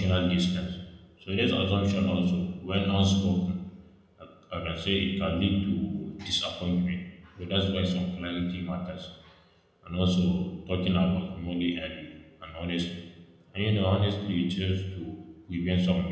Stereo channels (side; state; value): both; identical; correlation 1.00